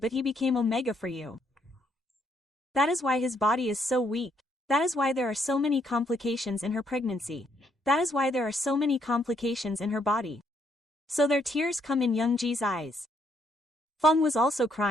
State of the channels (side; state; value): both; normal; correlation 0.72